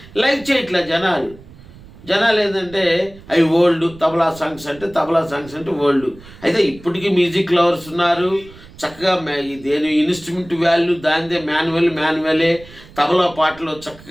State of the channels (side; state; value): right; noise; rumble, 21 dB below the sound